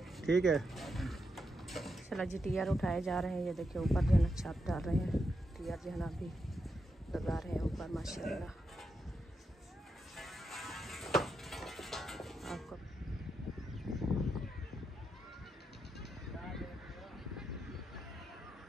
ठीक है चला जी टियर उठाए जा रहे हैं। ये देखिए ऊपर जो है ना छत डाल रहे हैं, टियर जो है ना अभी लगा रहे हैं ऊपर माशाल्लाह। आपको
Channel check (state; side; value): normal; both; correlation 0.84